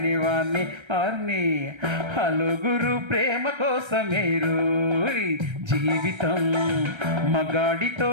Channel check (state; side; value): late; left; 1.3 ms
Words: వాణ్ణి అన్ని. హలుగురు ప్రేమ కోసమే రోయ్ జీవితం, మగాడితో